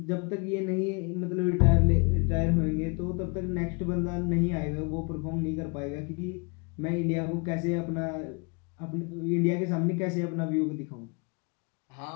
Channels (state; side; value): quieter; right; 32.5 dB